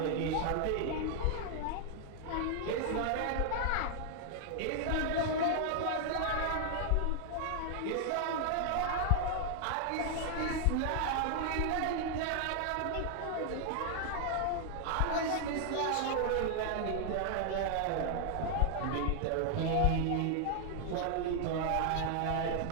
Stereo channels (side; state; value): both; different; correlation 0.00